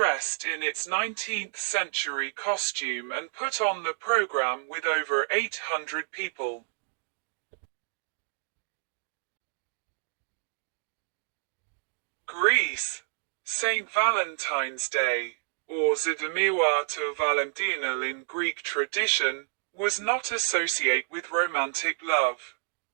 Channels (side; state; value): left; silent; digital silence